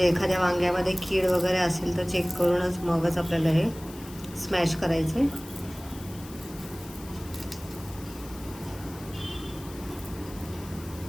एखाद्या वांग्यामध्ये कीड वगैरे असेल तर चेक करूनच मगच आपल्याला हे स्मॅश करायचं आहे।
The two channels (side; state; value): left; noise; hiss, 18 dB below the sound